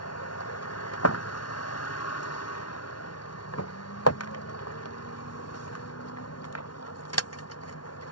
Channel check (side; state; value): right; late; 0.71 ms